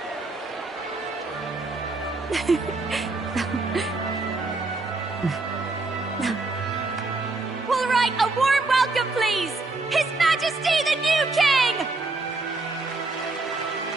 All right, a warm welcome, please! His Majesty the new King!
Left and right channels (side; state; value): left; quieter; 3.4 dB